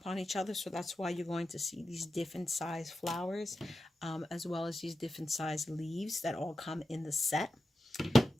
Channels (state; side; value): normal; both; correlation 0.91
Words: each other, so that's why you're going to see these different size flowers, as well as these different size leaves that all come in the set.